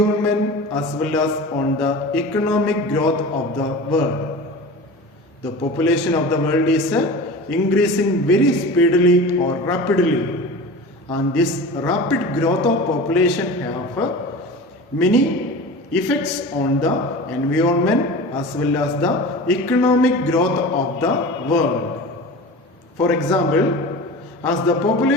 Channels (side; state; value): both; normal; correlation 0.34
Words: as well as on the economic growth of the world. The population of the world is increasing very speedily or rapidly, and this rapid growth of population have many effects on the environment as well as the economic growth of the world. For example, as the